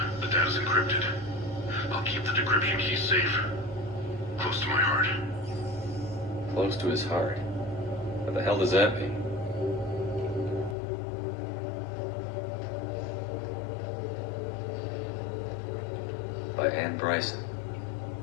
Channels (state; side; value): drops out; right; at 10.8 s